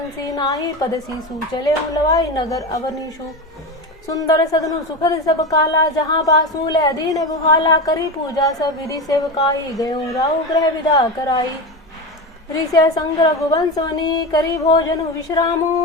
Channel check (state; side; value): normal; both; correlation 0.20